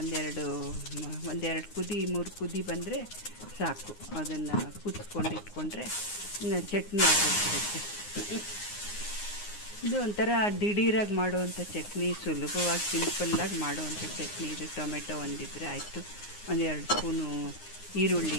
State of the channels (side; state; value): right; late; 9.6 ms